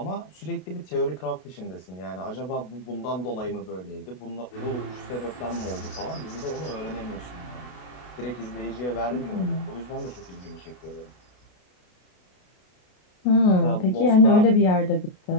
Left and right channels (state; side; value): late; right; 32 ms